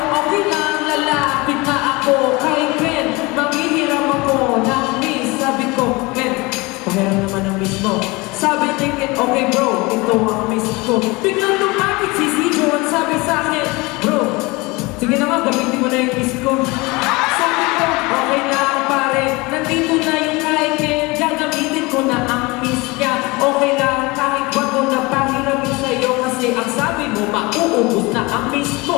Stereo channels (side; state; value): right; quieter; 24.3 dB